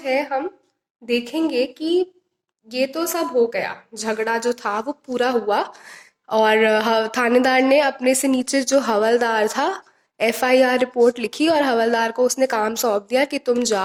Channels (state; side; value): identical; both; correlation 1.00